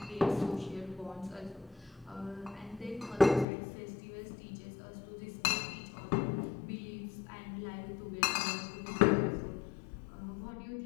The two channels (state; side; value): drops out; right; at 3.5 s